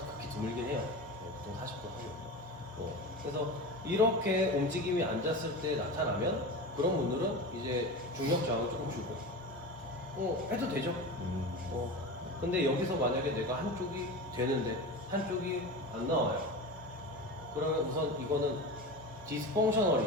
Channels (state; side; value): normal; both; correlation 0.28